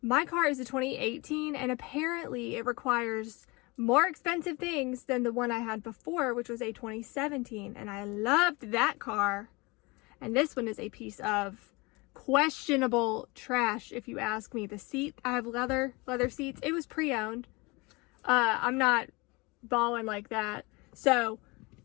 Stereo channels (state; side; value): quieter; right; 25.7 dB